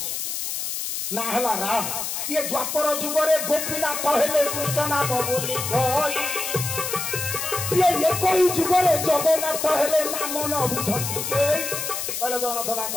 ना हला राम ये द्वापर जुगरे गोपीनाथ हेले कृष्ण नाम बोली कई ये कोई जुगरे जगन्नाथ हेले नाम न बुझंती के कहले जगन्नाथ ना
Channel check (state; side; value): noise; left; hiss, 3 dB below the sound